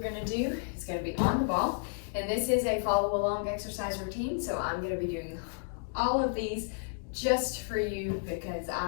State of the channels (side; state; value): right; silent; digital silence